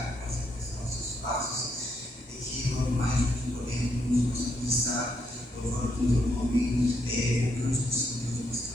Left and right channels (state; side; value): normal; both; correlation 0.77